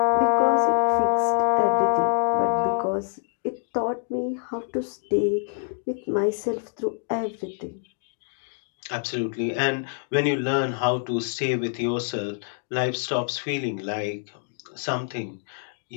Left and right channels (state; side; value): silent; right; 61 dB below the other